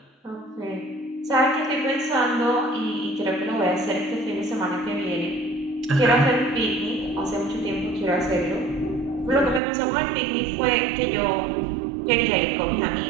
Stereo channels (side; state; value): left; drops out; at 9.6 s